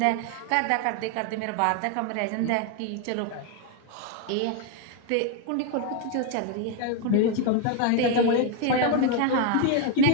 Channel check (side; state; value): both; different; correlation 0.01